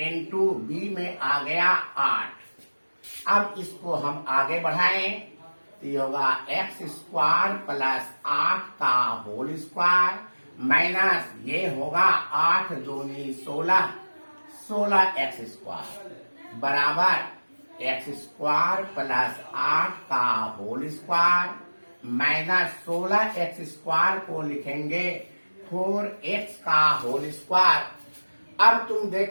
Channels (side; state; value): both; inverted; correlation -1.00